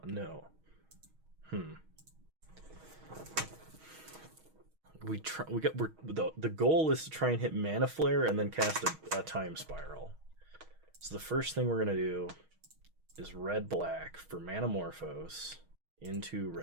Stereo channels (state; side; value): late; left; 6.3 ms